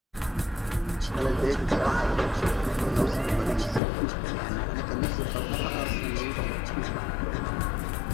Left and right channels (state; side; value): drops out; right; at 3.8 s